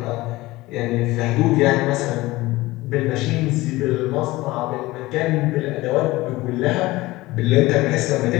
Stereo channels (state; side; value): quieter; right; 19.4 dB